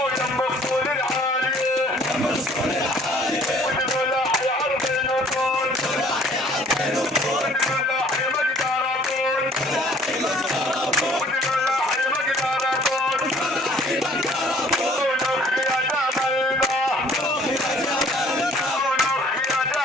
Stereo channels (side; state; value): both; normal; correlation 0.56